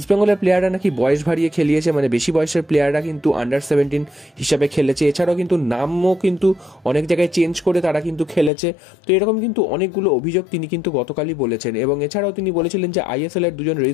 প্লেয়াররা নাকি বয়স ভারিয়ে খেলিয়েছে, মানে বেশি বয়সের প্লেয়াররা কিন্তু আন্ডার-17 হিসাবে খেলেছে। এছাড়াও কিন্তু নামও কিন্তু অনেক জায়গায় চেঞ্জ করে তারা কিন্তু খেলেছে। তো এরকম কিন্তু অনেকগুলো অভিযোগ তিনি কিন্তু গতকালই বলেছেন এবং এছাড়াও তিনি বলেছিলেন যে ISL এর দুজন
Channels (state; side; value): drops out; right; at 8.5 s